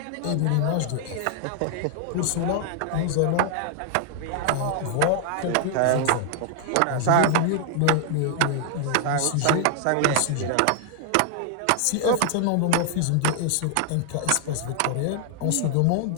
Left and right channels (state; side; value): different; both; correlation 0.00